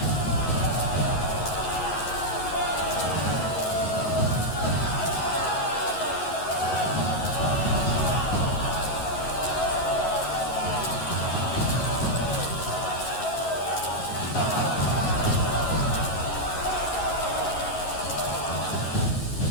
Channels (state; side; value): late; right; 11 ms